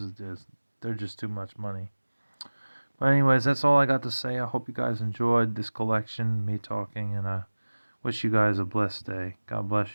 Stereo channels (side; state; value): both; inverted; correlation -1.00